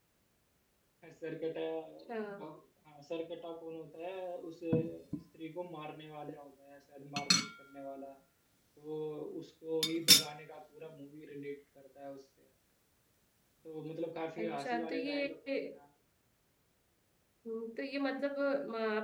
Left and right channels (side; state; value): both; identical; correlation 1.00